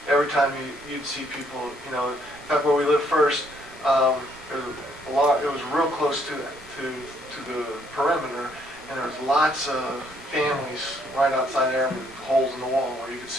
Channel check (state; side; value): normal; both; correlation 0.68